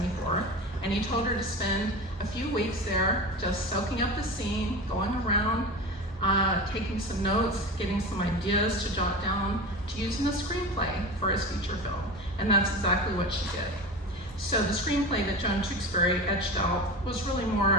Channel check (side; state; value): both; normal; correlation 0.29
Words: and he told her to spend a few weeks there just soaking up the scene, going around, taking some notes, getting some ideas to jot down to use in a screenplay for his feature film. And that's exactly what she did. So the screenplay that Joan Tewksbury etched out was really